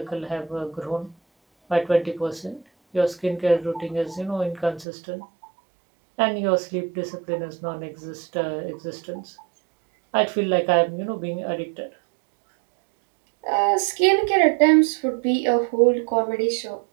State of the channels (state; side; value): drops out; left; at 4.9 s